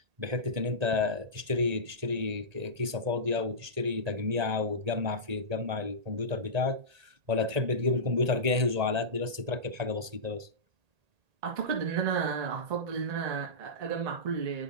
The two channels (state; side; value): late; left; 1.8 ms